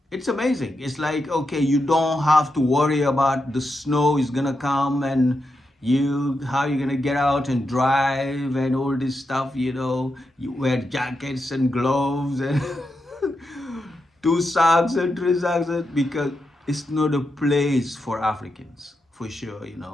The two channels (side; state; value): both; normal; correlation 0.86